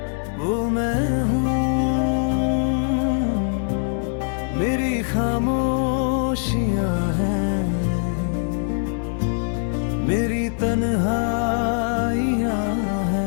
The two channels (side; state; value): right; silent; digital silence